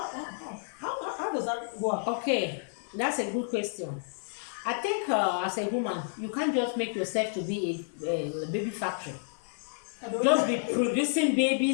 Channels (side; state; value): right; silent; 58 dB below the other